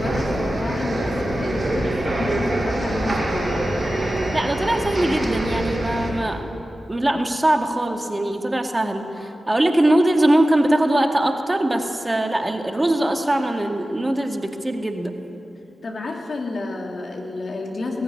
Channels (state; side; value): normal; both; correlation 0.95